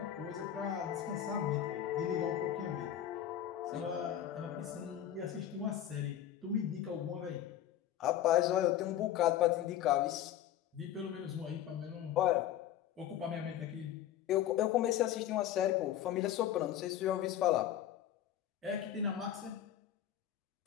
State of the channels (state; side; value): quieter; right; 11.2 dB